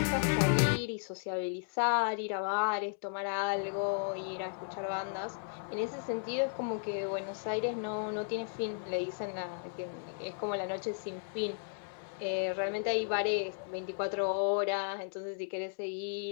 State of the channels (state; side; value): silent; right; digital silence